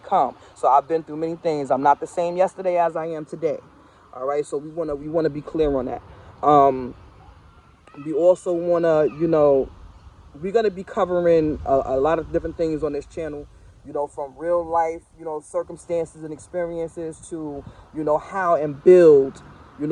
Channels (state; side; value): identical; both; correlation 1.00